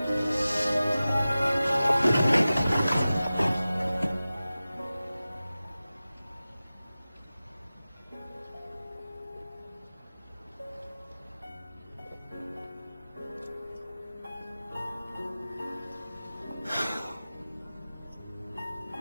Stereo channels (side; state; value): both; inverted; correlation -0.96